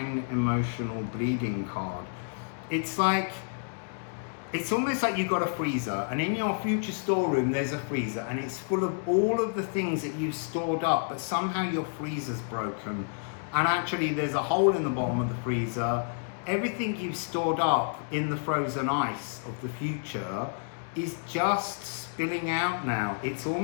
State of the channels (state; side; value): silent; right; digital silence